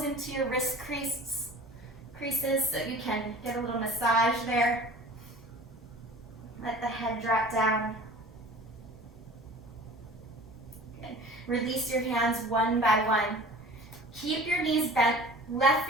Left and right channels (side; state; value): both; normal; correlation 0.43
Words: into your wrist creases so you can get a little massage there. Let the head drop down. Good. Release your hands one by one. Keep your knees bent, left